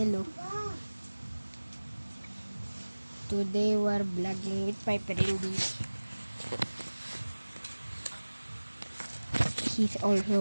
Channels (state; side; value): inverted; both; correlation -1.00